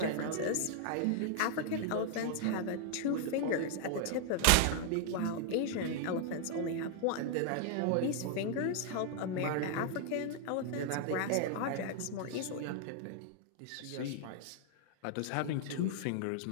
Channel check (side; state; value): both; different; correlation 0.00